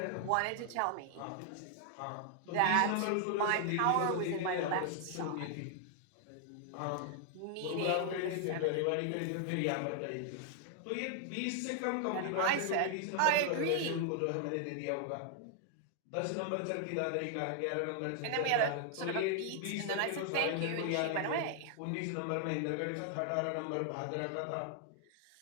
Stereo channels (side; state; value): both; different; correlation 0.00